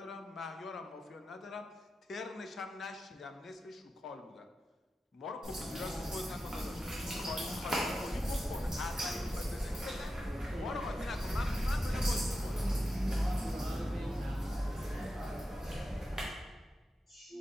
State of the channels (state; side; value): normal; both; correlation 0.90